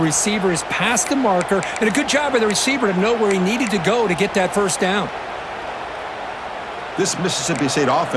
is past the marker, and a good job by the receiver to know where he needed to go to get that first down. This Mississippi State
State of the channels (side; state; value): both; identical; correlation 1.00